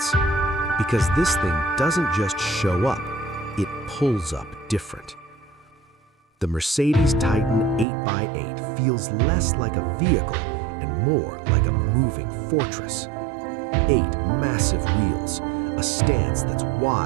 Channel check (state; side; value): drops out; left; at 7.9 s